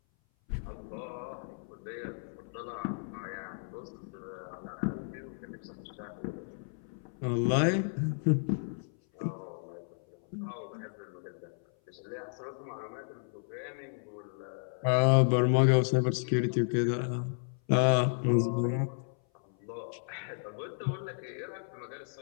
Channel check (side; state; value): right; silent; 56 dB below the other